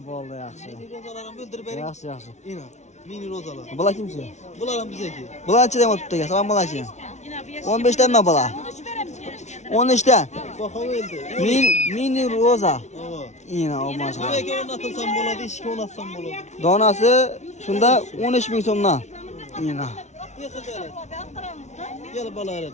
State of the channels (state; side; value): late; right; 0.33 ms